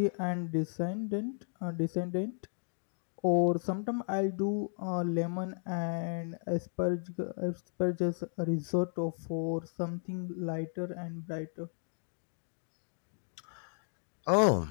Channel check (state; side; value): silent; right; digital silence